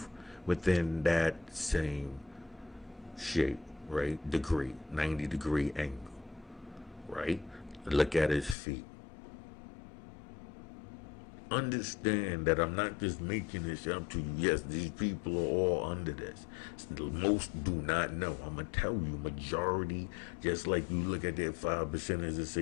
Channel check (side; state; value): right; drops out; at 8.6 s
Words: within that same shape, right? Degree, 90-degree angle, right? Look at his feet. Understand that I'm not just making this up to you. Yes, these people are all under this. Most do not know. I'm gonna tell you, majority, just like you look at that 5% as to